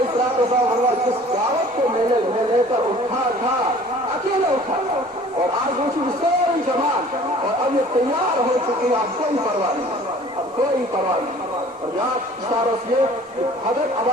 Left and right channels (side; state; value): both; normal; correlation 0.49